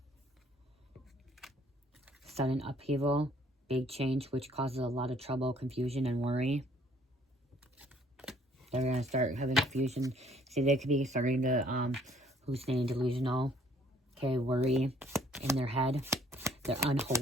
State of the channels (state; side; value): normal; both; correlation 0.62